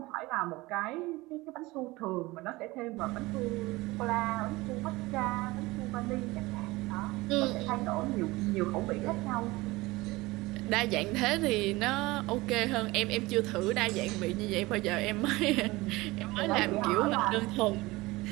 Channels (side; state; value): left; quieter; 20.9 dB